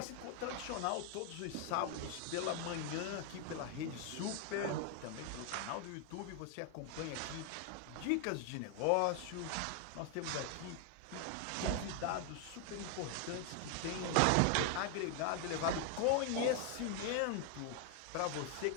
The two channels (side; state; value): both; different; correlation 0.00